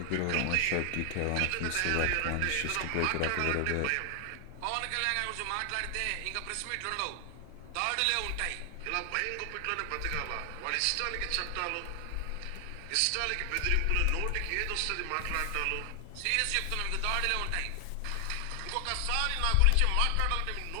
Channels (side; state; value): both; different; correlation 0.00